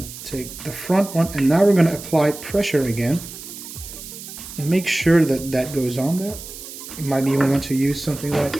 take the front one, and now we're going to apply pressure again. And make sure that that goes on there. You might even want to use something like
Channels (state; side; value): noise; right; hiss, 13 dB below the sound